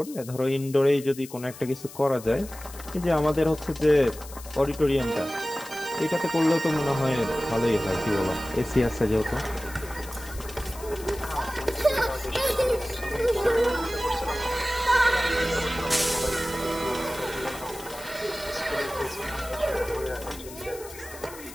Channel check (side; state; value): left; noise; hiss, 16 dB below the sound